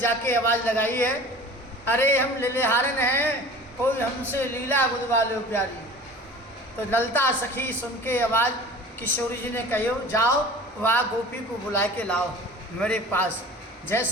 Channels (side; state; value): both; normal; correlation 0.41